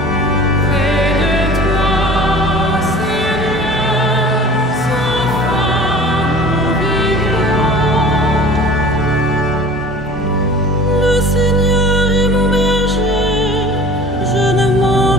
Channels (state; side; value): normal; both; correlation 0.42